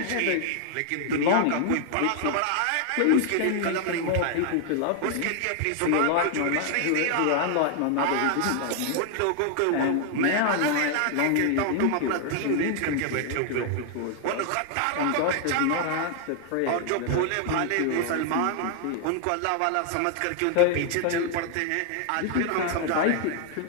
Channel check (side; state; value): both; different; correlation 0.00